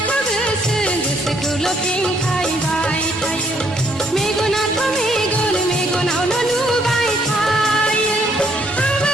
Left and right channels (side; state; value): both; normal; correlation 0.68